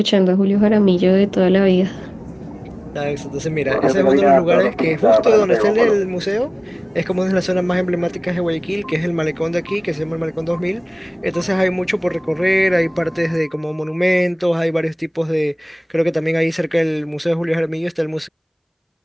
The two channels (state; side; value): identical; both; correlation 1.00